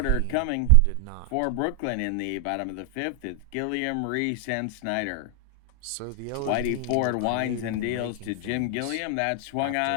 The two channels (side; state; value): both; different; correlation 0.00